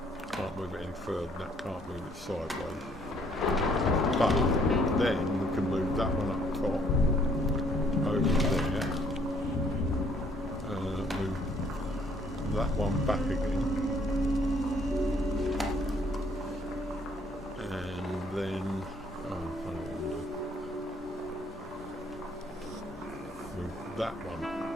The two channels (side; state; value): both; normal; correlation 0.64